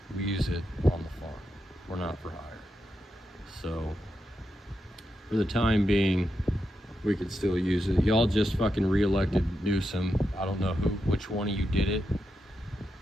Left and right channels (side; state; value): both; normal; correlation 0.86